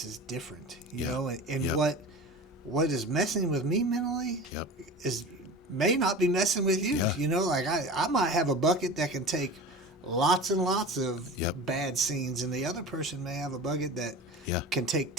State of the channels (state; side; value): normal; both; correlation 0.34